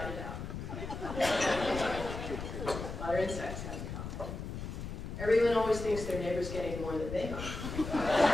it out. Water and sex have in common. Everyone always thinks their neighbor's getting more than they are.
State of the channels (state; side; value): noise; left; rumble, 7 dB below the sound